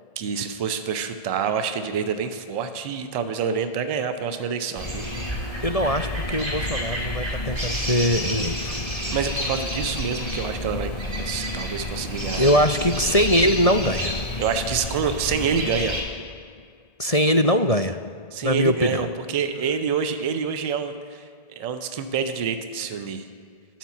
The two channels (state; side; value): late; right; 1.7 ms